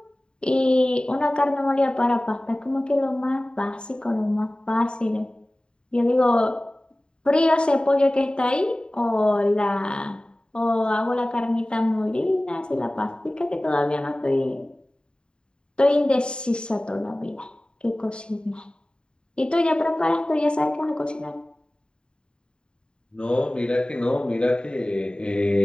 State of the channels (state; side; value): late; right; 0.051 ms